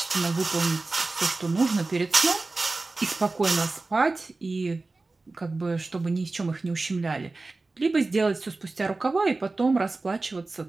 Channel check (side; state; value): left; quieter; 3.4 dB